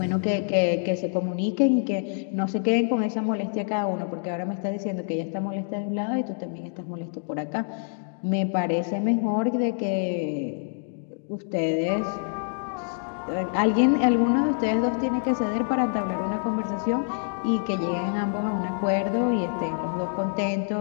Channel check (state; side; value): silent; right; digital silence